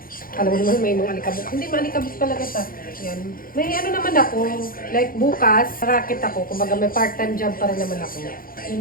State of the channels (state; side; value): late; right; 0.41 ms